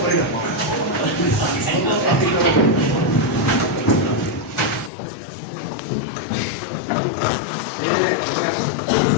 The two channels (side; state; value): right; drops out; at 4.9 s